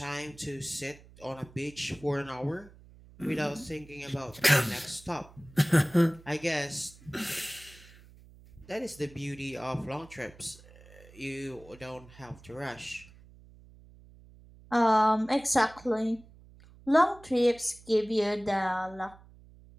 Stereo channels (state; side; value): noise; right; hum, 23 dB below the sound